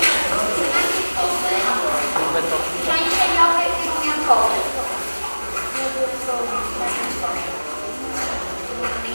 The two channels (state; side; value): inverted; both; correlation -1.00